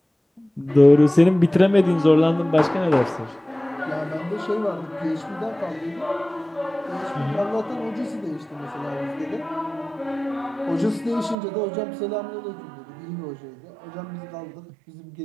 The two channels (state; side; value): drops out; left; at 11.4 s